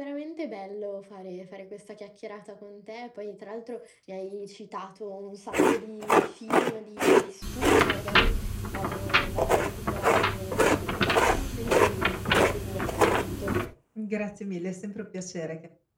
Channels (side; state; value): both; identical; correlation 1.00